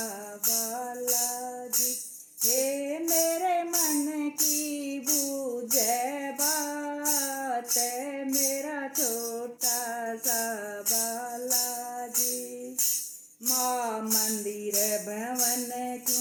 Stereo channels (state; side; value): identical; both; correlation 1.00